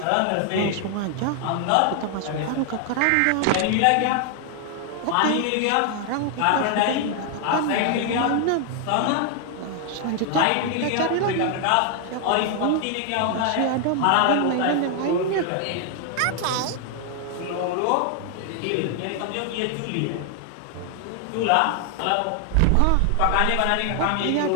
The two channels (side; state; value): both; different; correlation 0.00